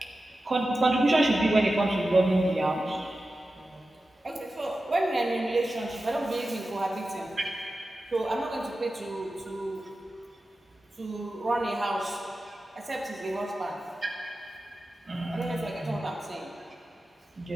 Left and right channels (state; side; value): normal; both; correlation 0.93